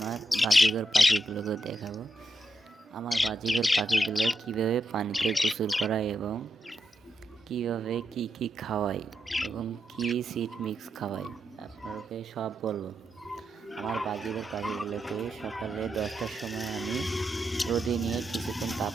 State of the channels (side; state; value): both; normal; correlation 0.84